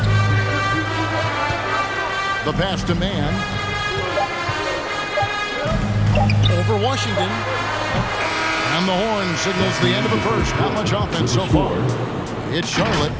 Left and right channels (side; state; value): both; identical; correlation 1.00